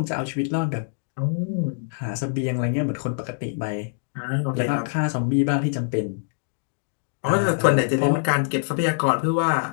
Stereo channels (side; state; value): right; silent; digital silence